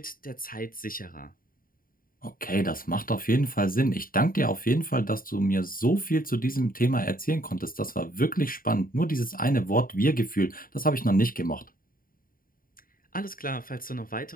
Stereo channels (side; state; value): right; late; 0.41 ms